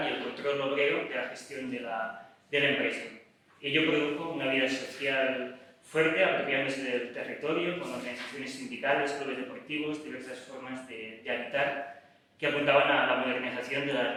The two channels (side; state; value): both; identical; correlation 1.00